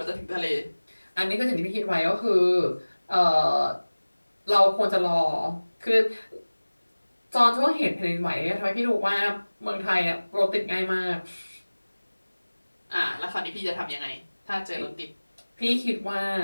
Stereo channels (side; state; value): both; inverted; correlation -1.00